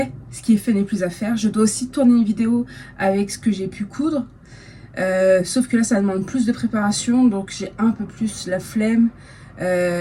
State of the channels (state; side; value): identical; both; correlation 1.00